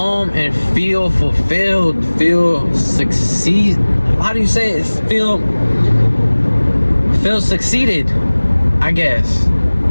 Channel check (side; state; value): both; inverted; correlation -1.00